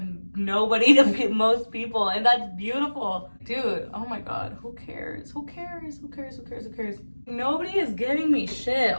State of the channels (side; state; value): both; inverted; correlation -1.00